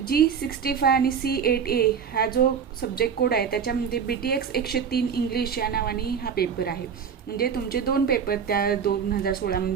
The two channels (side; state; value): left; quieter; 7.0 dB